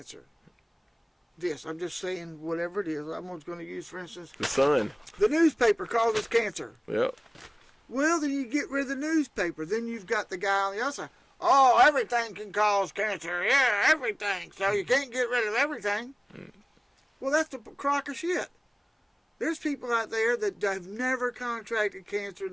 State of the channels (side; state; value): both; identical; correlation 1.00